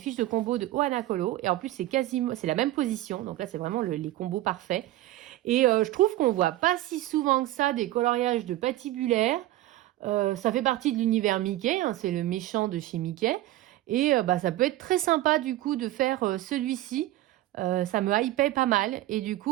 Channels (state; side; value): quieter; left; 15.7 dB